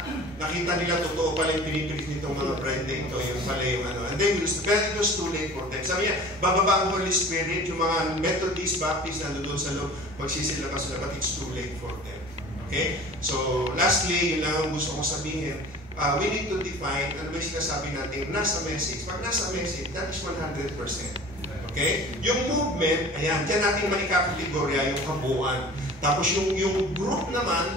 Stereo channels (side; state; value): both; normal; correlation 0.42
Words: nila totoo pala yung pinipilit nitong mga bride na ito, yung pala yung ano. And then, it was too late for them. Sabi niya, bababa ang Holy Spirit, yung mga Methodist, Baptist, nandun sa loob, magsisilakas sila, but it's too late for them. Okay? So, lastly, yun lang ang gusto kong sabihin. We need to define, ano ba yung sinasabi natin, nasa message. Pag nasa message, that is 100%. Okay? Yung movement, ayan, dyan natin maikakategorya yung kabuuan. Tapos yung group